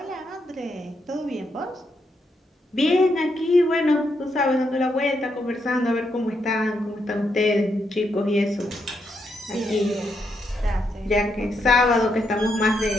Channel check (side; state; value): both; normal; correlation 0.80